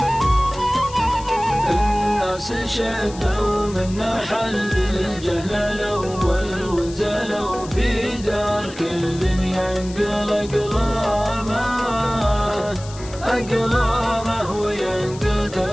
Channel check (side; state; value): left; noise; hiss, 17 dB below the sound